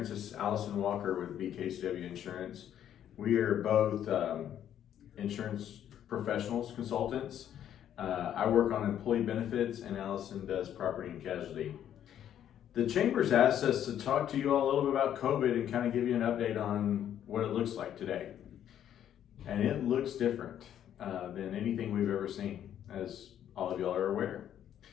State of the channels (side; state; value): right; quieter; 10.3 dB